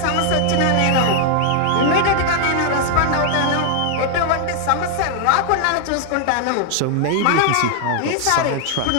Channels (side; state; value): both; different; correlation 0.00